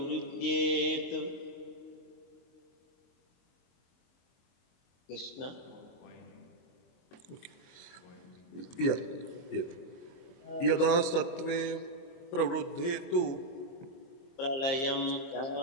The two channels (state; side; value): late; right; 23 ms